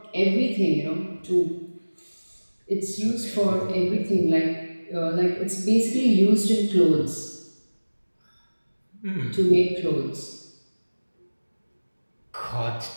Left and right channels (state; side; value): inverted; both; correlation -1.00